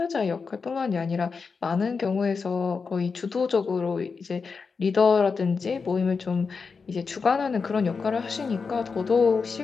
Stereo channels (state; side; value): quieter; right; 5.0 dB